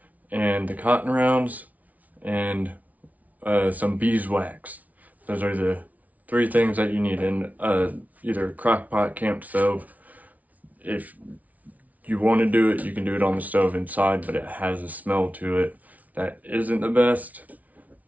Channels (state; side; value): late; left; 0.072 ms